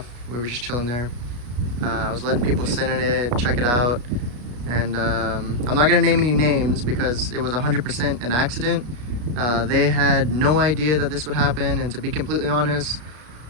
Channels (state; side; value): late; left; 33 ms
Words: We were just chilling there. I was letting people sit in it, check it out. And I'm not gonna name any names because it was 100% an accident. They had no idea that this would happen, and to be completely honest,